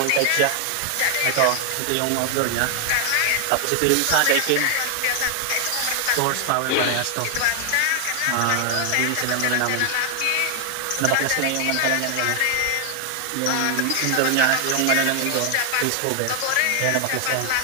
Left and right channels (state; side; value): different; both; correlation 0.00